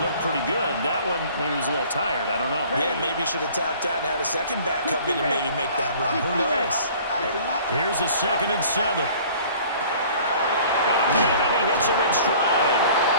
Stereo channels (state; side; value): inverted; both; correlation -0.50